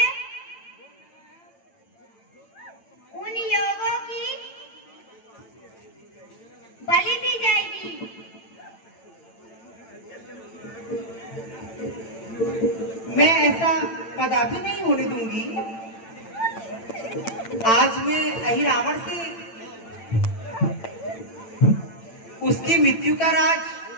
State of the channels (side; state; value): right; late; 8.9 ms